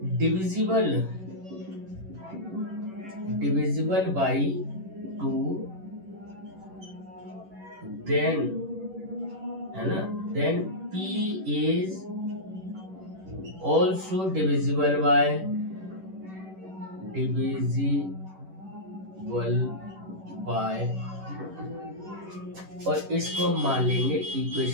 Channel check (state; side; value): late; left; 11 ms